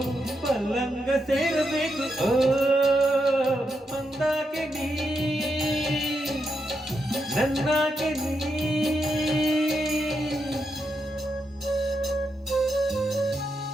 ಪಲ್ಲಂಗ ಸೇರಬೇಕು. ಓ ಮಂದಾಕೆ ನೀ ನನ್ನಾಕೆ ನೀ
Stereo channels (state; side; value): normal; both; correlation 0.83